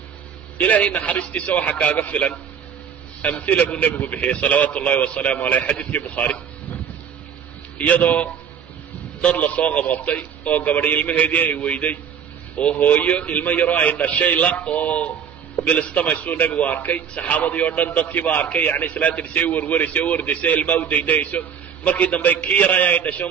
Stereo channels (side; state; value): left; quieter; 7.7 dB